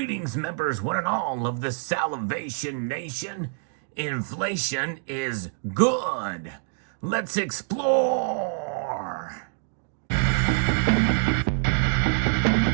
members, one and all of the Salivation Nation. Inflation is good. Let's explore.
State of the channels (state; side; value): silent; left; 61 dB below the other